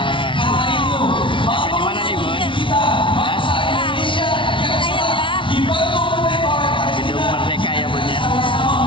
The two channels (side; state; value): right; late; 0.25 ms